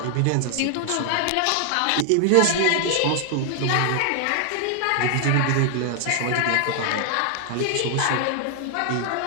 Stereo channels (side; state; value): both; different; correlation 0.00